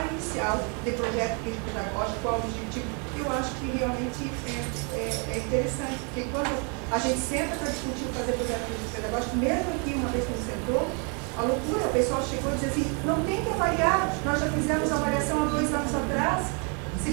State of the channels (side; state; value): left; quieter; 36.6 dB